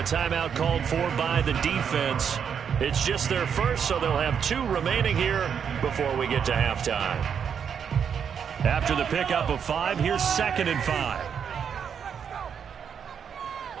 timeout called for by the defense. It's just their first, so they'll have 2 remaining here before we get to halftime. After the pickup of 5, here's 2nd and 5.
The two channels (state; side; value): quieter; left; 7.5 dB